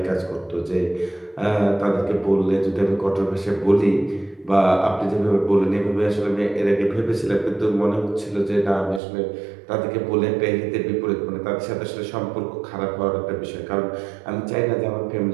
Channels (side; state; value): left; drops out; at 9.0 s